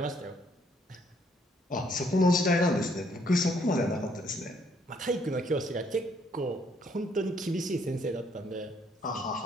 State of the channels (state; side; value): normal; both; correlation 0.67